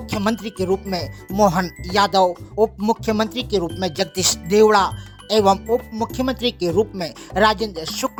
के रूप में मोहन यादव, उप मुख्यमंत्री के रूप में जगदीश देवड़ा एवं उप मुख्यमंत्री के रूप में राजेंद्र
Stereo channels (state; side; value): identical; both; correlation 1.00